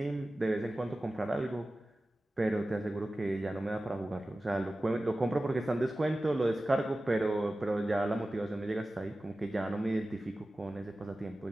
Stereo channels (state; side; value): normal; both; correlation 0.96